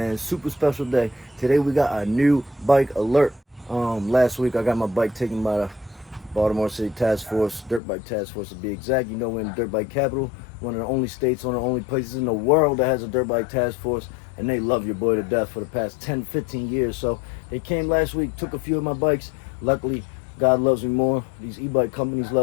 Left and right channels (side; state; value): right; drops out; at 7.8 s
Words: Super special day. Today we got a new bike alert. Last week I got my bike taken by the Baltimore City Task Force, Dirt Bike Task Force to be exact. You know, we're in the Dirt Bike capital, one of the only states, one of the only places in the world that has a Dirt Bike Task Force, and they love your boy to death for the past 10, 15 years. So they came last week, took a few of my bikes. Luckily, God loves me more. These e-bike companies